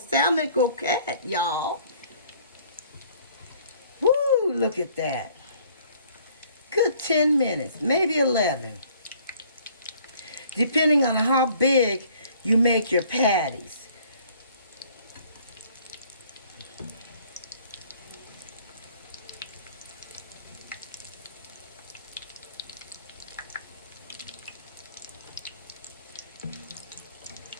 croquette, y'all. Woo, look at that. Good 10 minutes, maybe 11. Depending on how big you make your patties.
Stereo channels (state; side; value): inverted; both; correlation -0.58